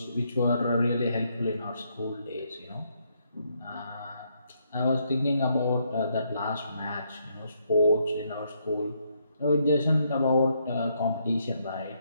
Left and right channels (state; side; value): inverted; both; correlation -0.75